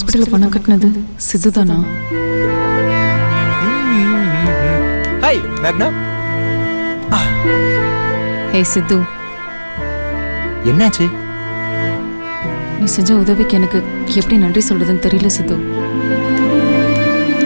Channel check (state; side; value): inverted; both; correlation -1.00